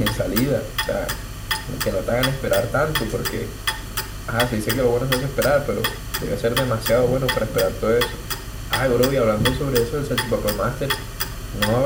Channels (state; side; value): identical; both; correlation 1.00